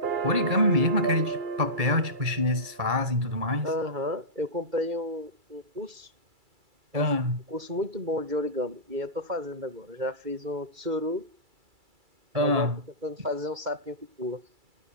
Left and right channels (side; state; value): left; late; 2.3 ms